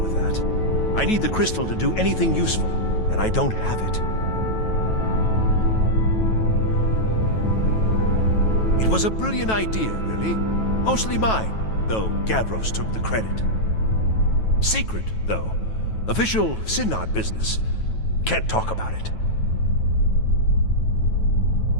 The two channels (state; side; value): late; right; 9.2 ms